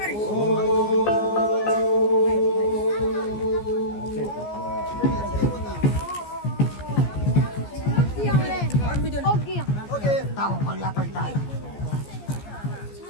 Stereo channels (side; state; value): right; late; 14 ms